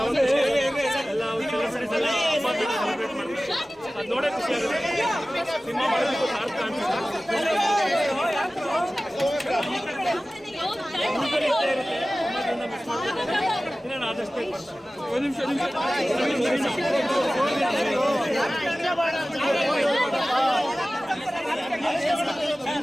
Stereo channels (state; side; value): normal; both; correlation 0.97